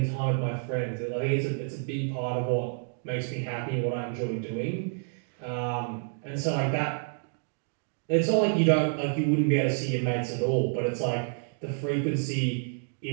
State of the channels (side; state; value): left; silent; 59 dB below the other